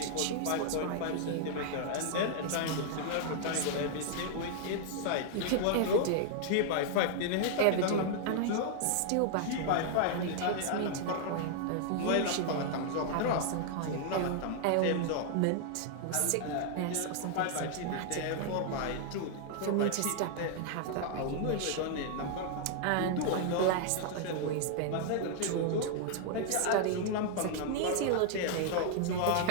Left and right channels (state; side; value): different; both; correlation -0.01